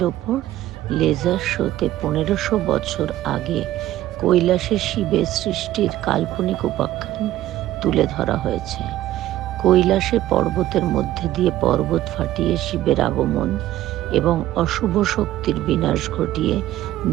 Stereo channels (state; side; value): quieter; left; 14.3 dB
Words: ওপর লেজার শোতে 1500 বছর আগে কৈলাসে শিবের সৃষ্টির কাল্পনিক উপাখ্যান তুলে ধরা হয়েছে। কৈলাসে পর্বতের মধ্যে দিয়ে পর্বত ফাটিয়ে শিবের আগমন এবং অশুভ শক্তির বিনাশ ঘটিয়ে